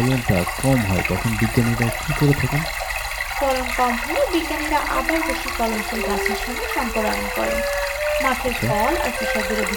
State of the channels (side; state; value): both; identical; correlation 1.00